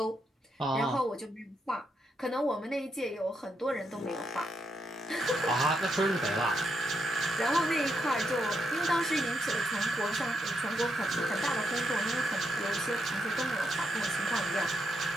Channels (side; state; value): both; normal; correlation 0.80